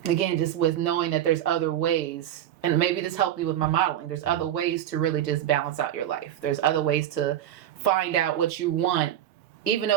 Again, just with knowing that there's other ways and maybe this helped me with my modeling, there's other ways to really just balance out your life. There's other ways to find out what you want, even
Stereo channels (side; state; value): left; quieter; 11.5 dB